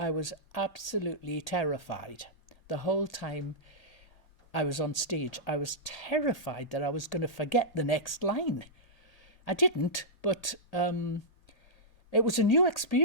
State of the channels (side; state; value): right; late; 1.8 ms